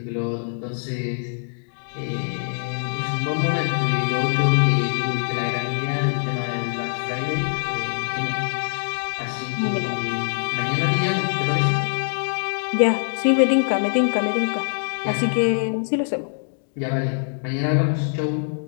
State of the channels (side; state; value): right; silent; digital silence